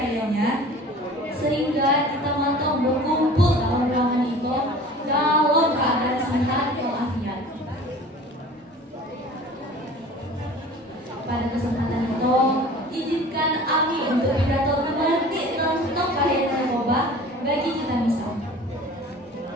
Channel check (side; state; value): both; normal; correlation 0.43